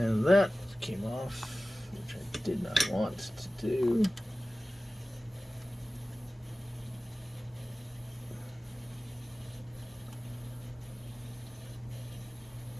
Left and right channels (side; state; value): both; normal; correlation 0.96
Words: that came off, which I did not want to do.